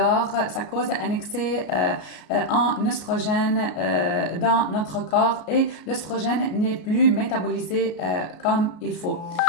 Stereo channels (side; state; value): right; late; 33 ms